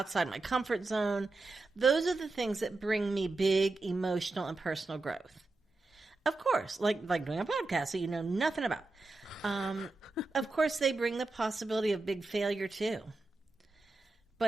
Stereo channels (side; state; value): left; quieter; 3.3 dB